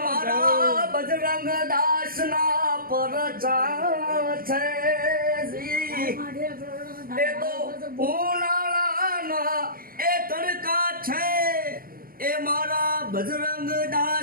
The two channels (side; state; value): left; late; 0.42 ms